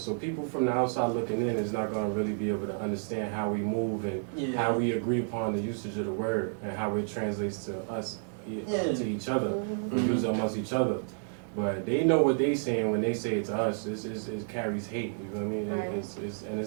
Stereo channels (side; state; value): left; silent; digital silence